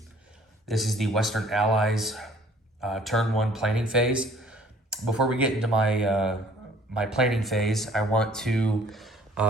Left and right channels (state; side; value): normal; both; correlation 0.55